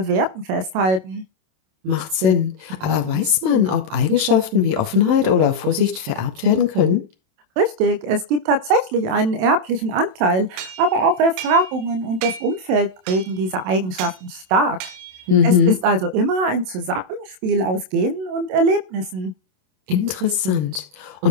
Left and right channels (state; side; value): late; left; 27 ms